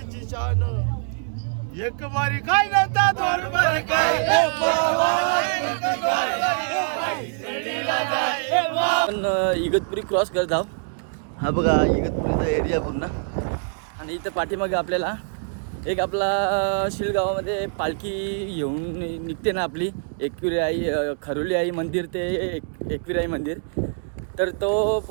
शान. एक वारी काय नव्हता, दोन वारी काय आपण इगतपुरी क्रॉस करत आहोत. हा बघा इगतपुरीचा एरिया पूर्ण. आणि इथं पाठीमागे आपल्याला एक आपला शिळगावामध्ये पालखी येऊन निघते ना आपली, एकविरा आई खरोली आई मंदिर ते एकविरा आई मंदिर. तर तो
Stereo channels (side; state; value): left; silent; digital silence